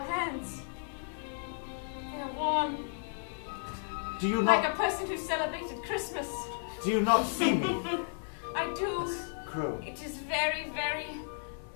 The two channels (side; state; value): right; silent; digital silence